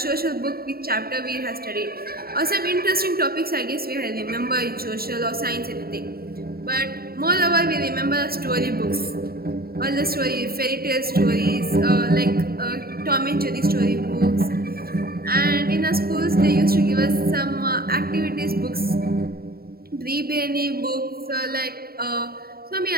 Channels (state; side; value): late; left; 0.44 ms